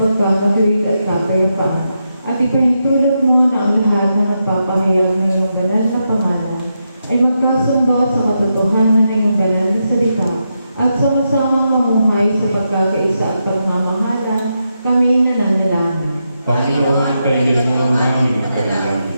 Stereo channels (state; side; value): inverted; both; correlation -0.85